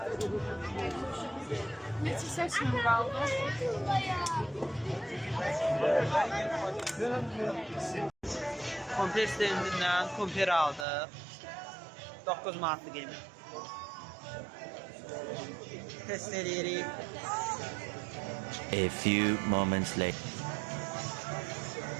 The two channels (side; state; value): left; drops out; at 10.9 s